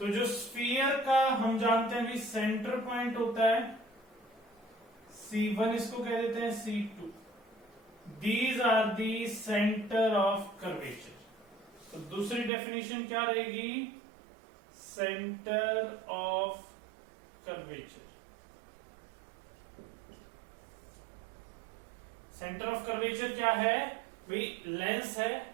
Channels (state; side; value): drops out; left; at 12.5 s